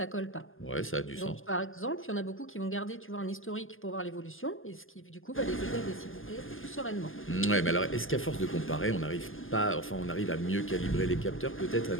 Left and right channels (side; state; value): right; late; 0.59 ms